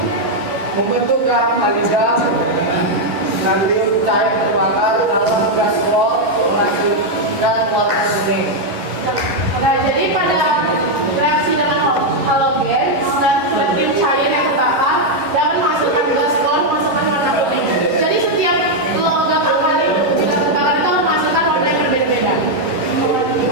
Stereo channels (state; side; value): late; left; 11 ms